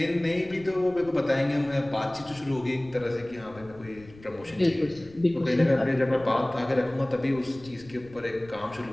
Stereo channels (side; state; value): left; noise; rumble, 22 dB below the sound